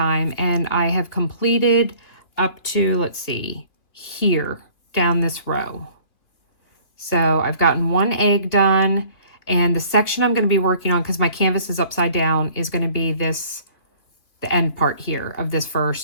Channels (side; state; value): right; late; 2.8 ms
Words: and I have completed up to, let's see, here down this row. So I've gotten one egg done, and the section I'm going to be working on, because my canvas is upside down, is going to be this, the end part here of this